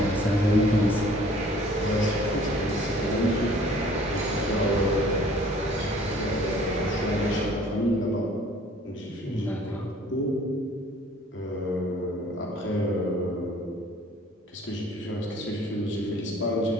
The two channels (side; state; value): both; normal; correlation 0.54